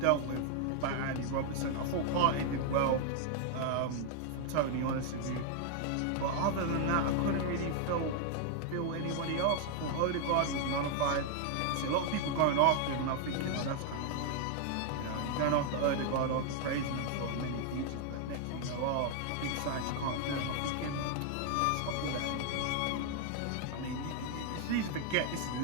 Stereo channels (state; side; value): different; both; correlation 0.00